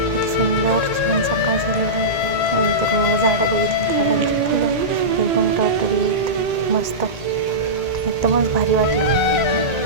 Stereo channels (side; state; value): left; late; 1.8 ms